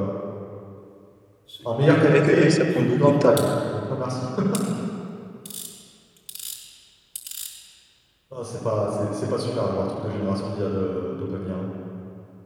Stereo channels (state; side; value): identical; both; correlation 1.00